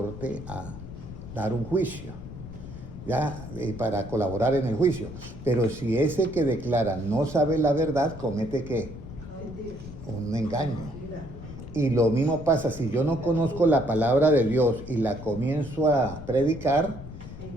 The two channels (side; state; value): left; noise; rumble, 12 dB below the sound